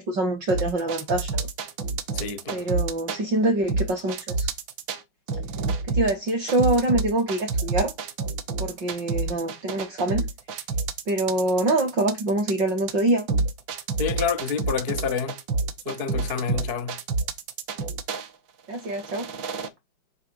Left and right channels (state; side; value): late; left; 5.8 ms